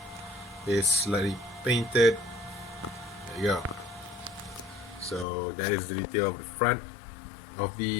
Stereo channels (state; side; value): drops out; right; at 5.2 s